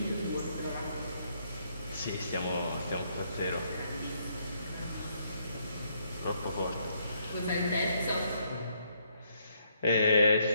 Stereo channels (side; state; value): both; inverted; correlation -0.72